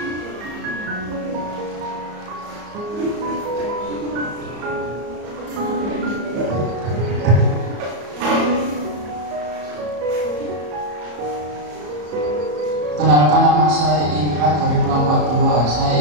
Kenalkan, nama saya Indra dari kelompok 2.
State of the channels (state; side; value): late; left; 34 ms